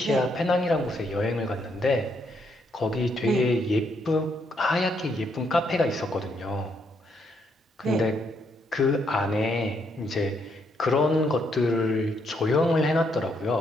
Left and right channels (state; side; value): normal; both; correlation 0.75